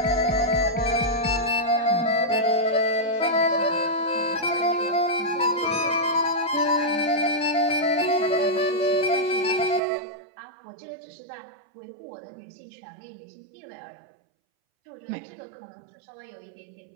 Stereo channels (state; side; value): drops out; left; at 9.8 s